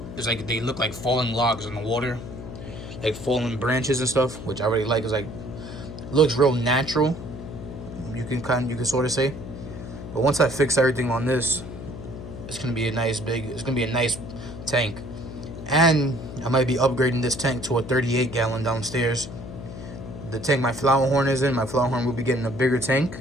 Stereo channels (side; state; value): left; noise; hum, 11 dB below the sound